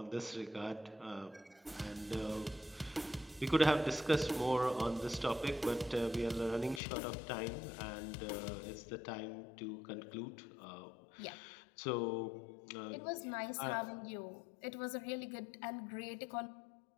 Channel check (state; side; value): drops out; right; at 6.8 s